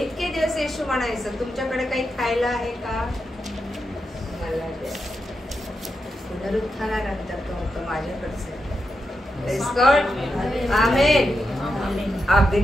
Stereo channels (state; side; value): normal; both; correlation 0.87